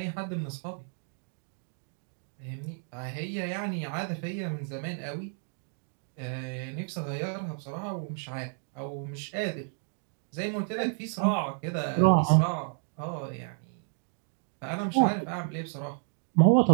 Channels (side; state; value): left; silent; 57 dB below the other